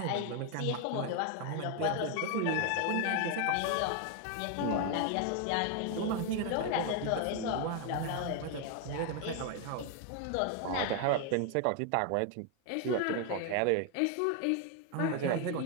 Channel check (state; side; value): different; both; correlation 0.01